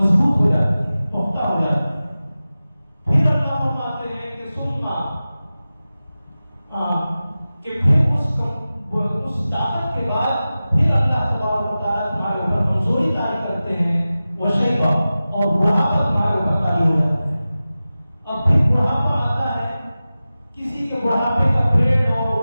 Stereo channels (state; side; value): inverted; both; correlation -0.95